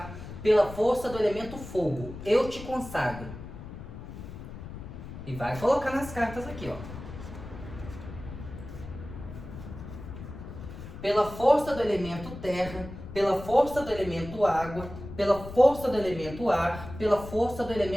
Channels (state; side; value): noise; left; rumble, 12 dB below the sound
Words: pela força do elemento fogo, eu te consagro. E vai colocar nas cartas aqui, ó. Pela força do elemento terra, pela força do elemento água, pela força do elemento ar, pela força do